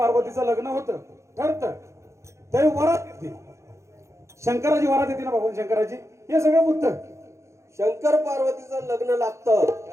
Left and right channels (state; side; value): late; left; 0.14 ms